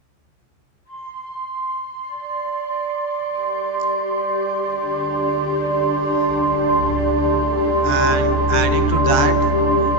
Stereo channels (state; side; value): late; right; 14 ms